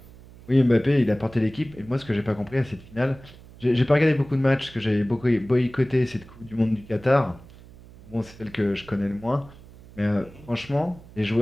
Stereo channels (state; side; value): noise; right; hum, 21 dB below the sound